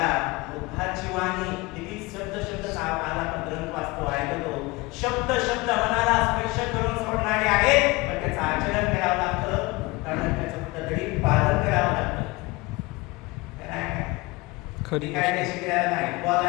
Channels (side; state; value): right; quieter; 23.1 dB